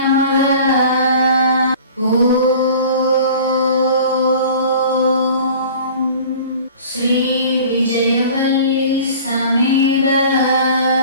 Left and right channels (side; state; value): both; inverted; correlation -0.44